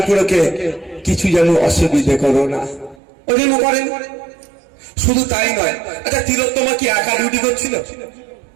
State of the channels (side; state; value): left; drops out; at 3.0 s